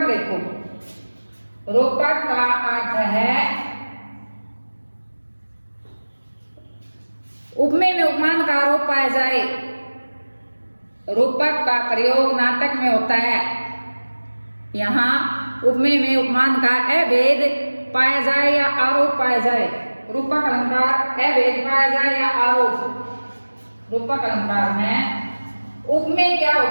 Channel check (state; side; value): inverted; both; correlation -1.00